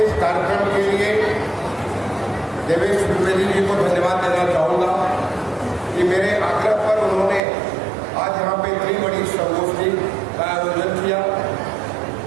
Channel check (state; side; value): drops out; left; at 7.4 s